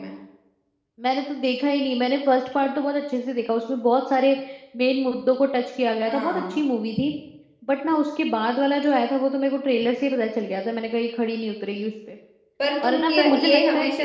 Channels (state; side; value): identical; both; correlation 1.00